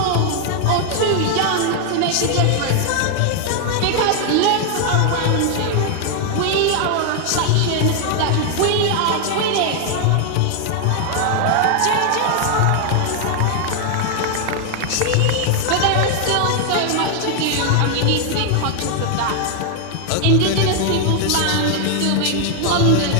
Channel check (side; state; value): both; different; correlation 0.00